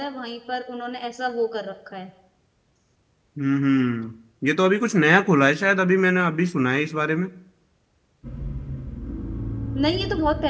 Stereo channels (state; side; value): identical; both; correlation 1.00